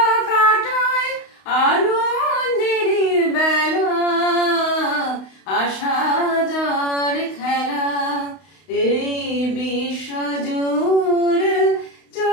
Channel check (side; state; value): right; late; 32 ms